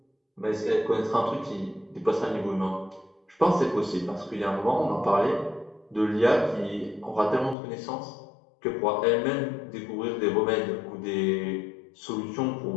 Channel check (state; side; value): drops out; right; at 7.6 s